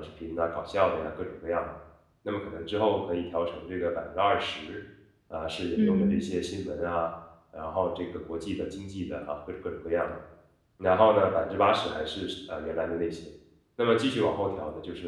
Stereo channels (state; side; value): identical; both; correlation 1.00